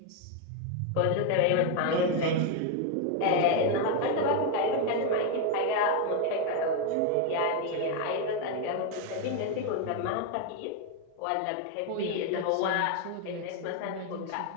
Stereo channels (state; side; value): different; both; correlation 0.01